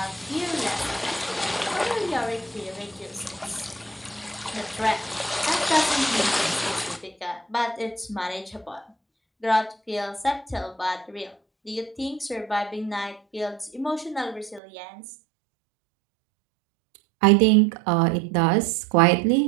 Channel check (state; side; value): drops out; left; at 14.6 s